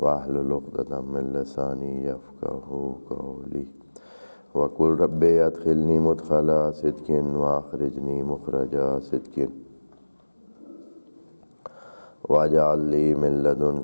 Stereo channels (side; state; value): both; inverted; correlation -1.00